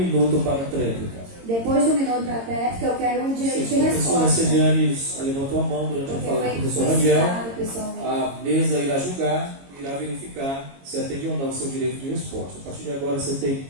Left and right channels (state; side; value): late; left; 22 ms